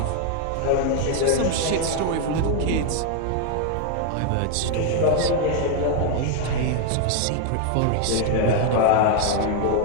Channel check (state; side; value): different; both; correlation 0.01